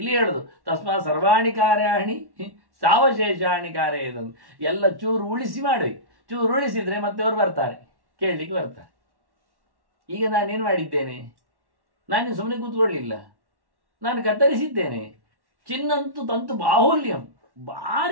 ಹೇಳುದು ತಸ್ಮಾ ಸರ್ವಾಣಿ ಕಾರ್ಯಾಣಿ ಸಾವಶೇಷಾಣಿ ಕಾರ್ಯ. ಇದನ್ನು ಎಲ್ಲ ಚೂರು ಉಳಿಸಿ ಮಾಡಬೇಕು. ಚೂರು ಉಳಿಸಿದ್ರೆ ಮತ್ತೆ ಅವರು ಬರ್ತಾರೆ, ಕೇಳಲಿಕ್ಕೆ ಬರ್ತಾರೆ. ಈಗ ನಾನೇನು ಮಾಡಿದ್ದೇನೆ? ನಾನು ಸುಮ್ಮನೆ ಕೂತ್ಕೊಳ್ಳಿಲ್ಲ, ನಾನು ಕತ್ತರಿಸಿದ್ದೇನೆ. ಚಿನ್ನಂತೂ ತಂತು ಬಾಹುಲ್ಯಂ,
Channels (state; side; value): late; left; 1.1 ms